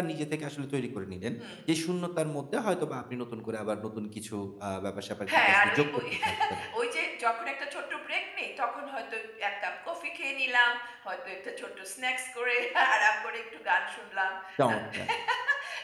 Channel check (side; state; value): both; identical; correlation 1.00